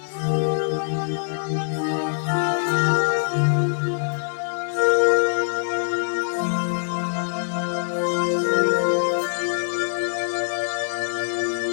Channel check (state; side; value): silent; right; digital silence